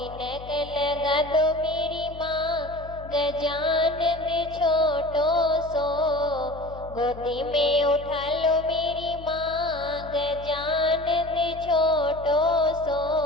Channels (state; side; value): noise; left; hum, 15 dB below the sound